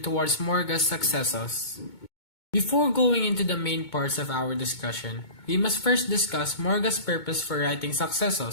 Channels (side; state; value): right; late; 2.2 ms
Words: towards Morga's successors. Before going into the main parts of our discussion, we must first discuss Morga's purpose for writing